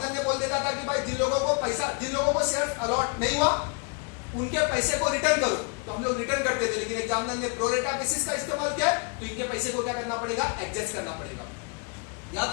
ने बोल देता था कि भाई जिन लोगों को शेयर अलॉट नहीं हुआ उनके पैसे को रिटर्न करो, तो हम लोग रिटर्न करते थे। लेकिन एग्जामिनर ने प्रो रेटा बेसिस का इस्तेमाल किया, तो इनके पैसे को क्या करना पड़ेगा? एडजस्ट करना पड़ेगा।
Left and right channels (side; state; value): right; quieter; 34.3 dB